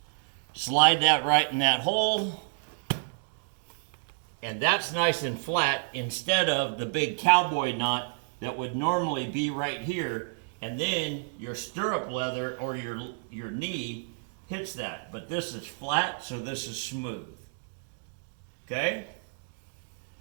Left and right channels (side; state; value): left; silent; digital silence